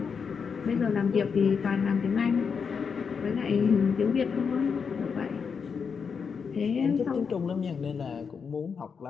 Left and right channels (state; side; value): quieter; right; 6.0 dB